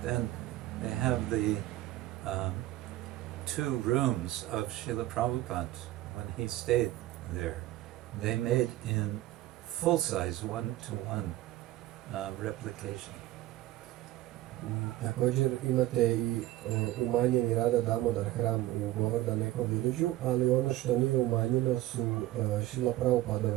then they have the 2 rooms of Srila Prabhupada when he stayed there. They made in full size, 1-to-1 replication. Također imate i umanjeni Radha Damodar hram u Govardhan Eko Village, ali ono što nije umanjeno su Srila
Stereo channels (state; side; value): quieter; left; 15.6 dB